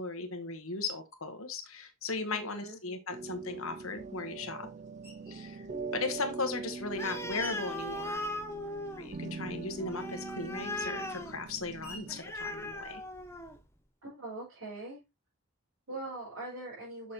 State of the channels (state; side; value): normal; both; correlation 0.05